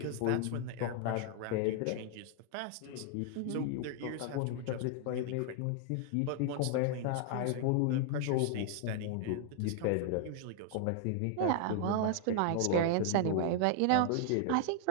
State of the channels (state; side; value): different; both; correlation 0.00